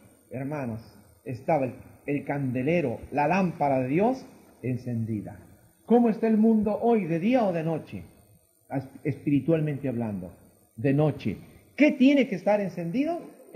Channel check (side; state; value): both; identical; correlation 1.00